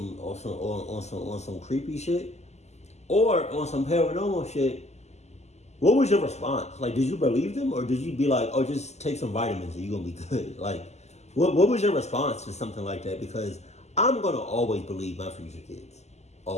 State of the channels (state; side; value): late; right; 0.33 ms